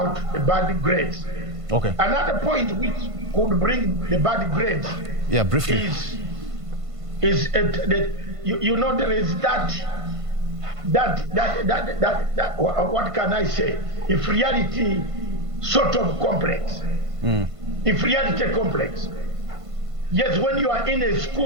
the bad grades. Okay. Another point which could bring the bad grades, briefly, is there is that what can I say? Inferiority sort of complex. Inferiority complex. Yes, when you are in a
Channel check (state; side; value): late; left; 1.5 ms